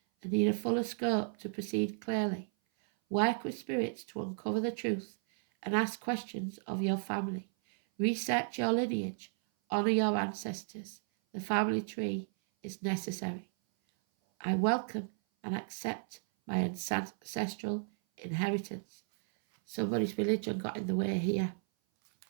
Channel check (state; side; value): silent; left; 55 dB below the other